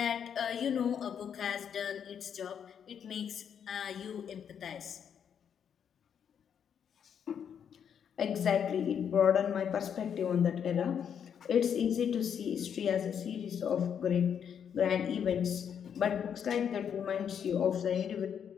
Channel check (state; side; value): quieter; right; 8.0 dB